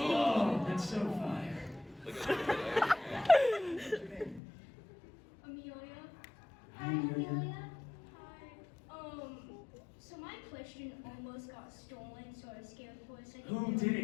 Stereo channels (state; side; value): drops out; right; at 4.4 s